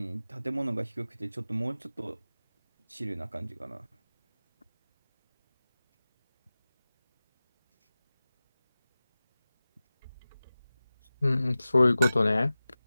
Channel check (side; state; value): both; inverted; correlation -0.96